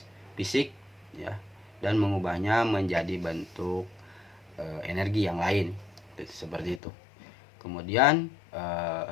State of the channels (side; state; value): right; drops out; at 6.8 s